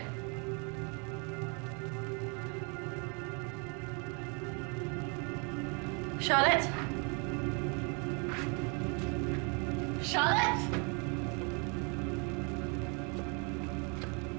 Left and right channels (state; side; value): quieter; left; 34.8 dB